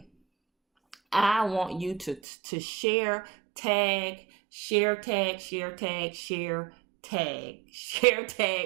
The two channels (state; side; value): drops out; left; at 2.2 s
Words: I want you to share, tag, share, tag, share, tag, share, tag, share,